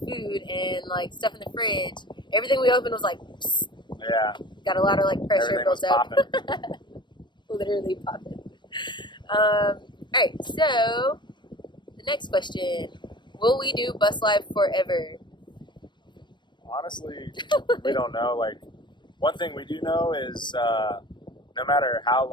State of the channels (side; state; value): right; late; 0.22 ms